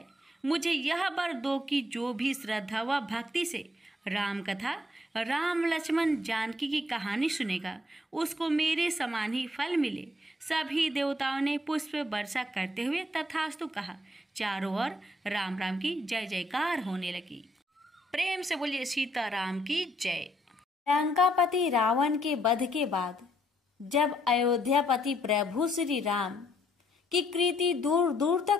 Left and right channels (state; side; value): normal; both; correlation 0.70